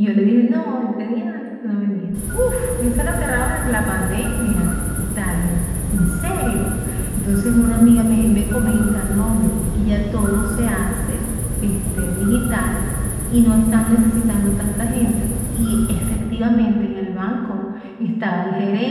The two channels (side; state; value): both; identical; correlation 1.00